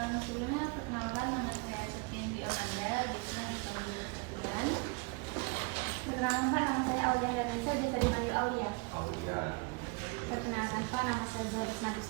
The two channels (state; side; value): quieter; left; 30.5 dB